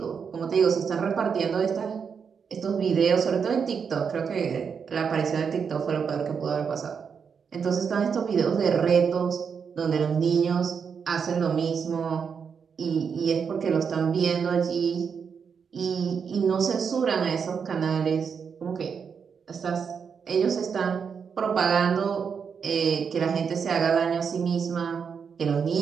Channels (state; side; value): quieter; left; 6.4 dB